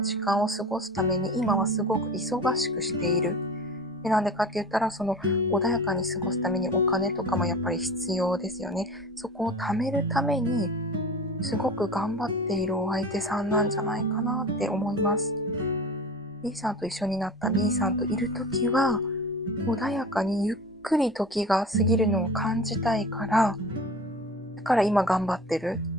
時間を過ごすために今はすごく忙しくしている。で、なんでかって言ったら、穏やかに過ごすためにお金とかもやっぱり必要ですよね。そこを貯めるために、すごく頑張っているお相手さんなんじゃないかなって思います。B さんと一緒になった B さんといるときは、穏やかにゆっくり時が過ぎるのを感じたいから、だから今頑張ってる。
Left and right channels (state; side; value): normal; both; correlation 0.35